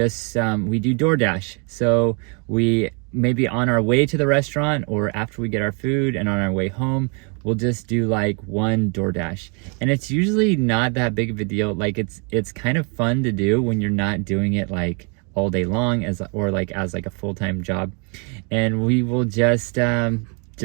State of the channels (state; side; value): quieter; left; 36.0 dB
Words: So we maybe on our way to the restaurant or after we get our food and on our way home, we'll just do like one Doordash. And it's usually not that big of a deal. Like it's kind of fun to do when you're not doing it like all day long as a full-time job. And we will just